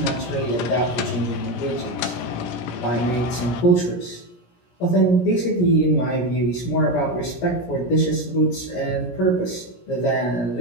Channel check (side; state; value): right; late; 17 ms